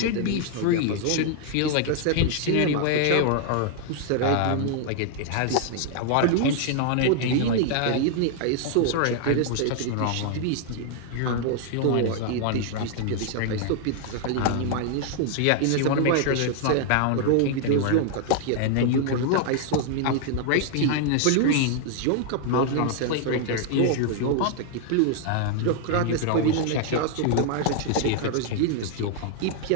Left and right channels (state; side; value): different; both; correlation 0.00